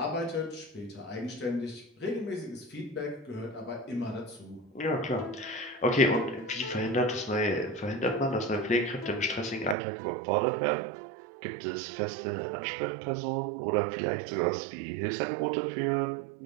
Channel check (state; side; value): drops out; left; at 9.8 s